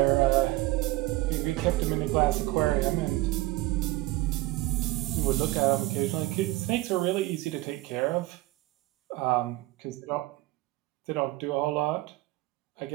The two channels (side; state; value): left; quieter; 18.8 dB